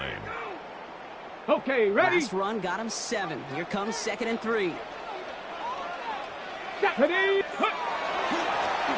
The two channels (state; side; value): identical; both; correlation 1.00